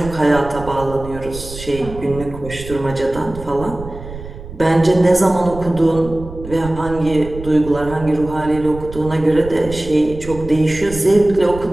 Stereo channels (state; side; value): noise; right; rumble, 13 dB below the sound